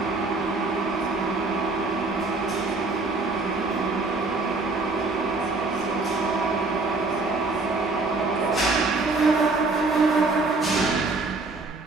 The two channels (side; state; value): left; quieter; 3.6 dB